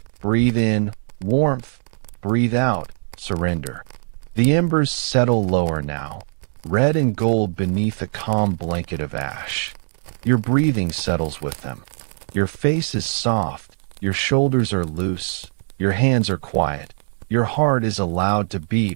Breathe in, warmth. Breathe out, surrender. The embers settle lower now, red and gold beneath a calm blanket of ash. Your breathing settles with them. Your face is soft, your shoulders are loose, your hands are quiet. Your heart is allowed to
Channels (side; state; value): left; silent; 64 dB below the other